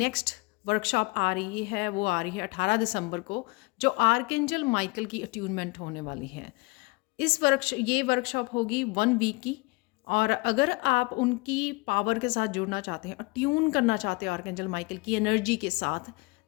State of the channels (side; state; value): right; quieter; 26.6 dB